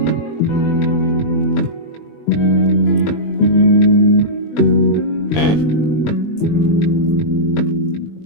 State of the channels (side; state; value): right; late; 20 ms